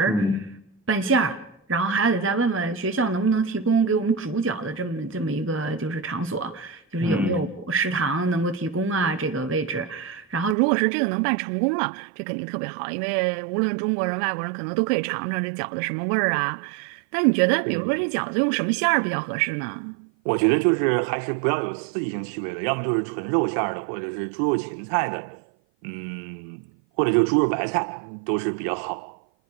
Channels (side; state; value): left; drops out; at 10.6 s